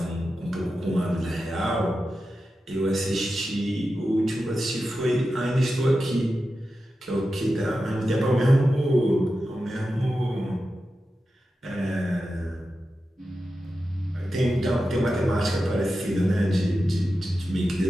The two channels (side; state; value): both; normal; correlation 0.91